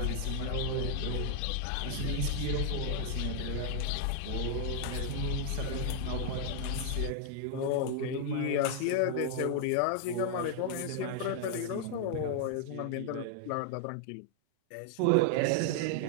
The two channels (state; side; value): different; both; correlation 0.00